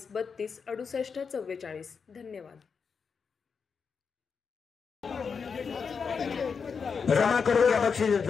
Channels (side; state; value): right; quieter; 5.8 dB